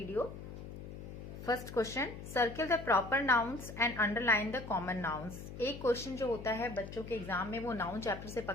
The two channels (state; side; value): noise; left; hum, 11 dB below the sound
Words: First question, circle the proper nouns and underline the common nouns. एक क्वेश्चन जो होता है बच्चों के एग्जाम में वो नाउन चैप्टर से